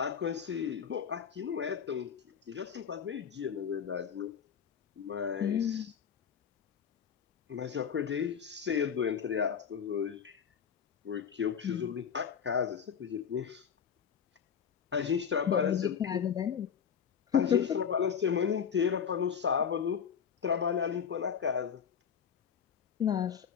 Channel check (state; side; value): quieter; right; 7.4 dB